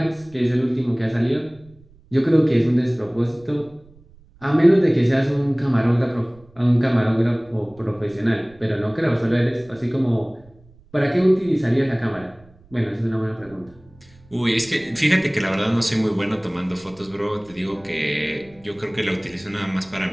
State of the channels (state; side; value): noise; right; rumble, 27 dB below the sound